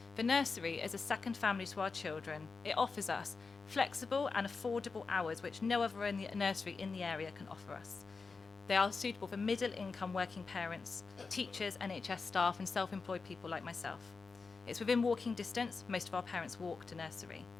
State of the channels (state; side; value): quieter; right; 4.5 dB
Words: The nursery is a second family to our children. It offers us flexible and affordable hours which no other nursery in the area can offer us. They are suitable for middle-income working parents, teachers, NHS staff and self-employed people like myself. It's within walking distance. Most of our parents walk to nursery.